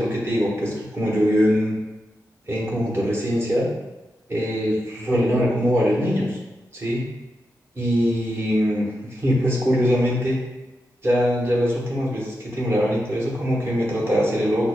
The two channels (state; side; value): normal; both; correlation 0.87